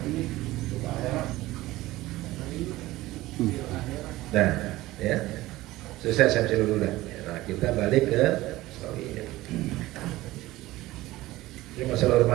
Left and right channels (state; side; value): quieter; left; 17.7 dB